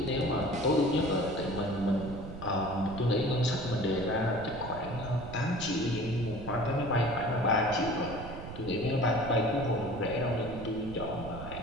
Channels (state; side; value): noise; right; rumble, 11 dB below the sound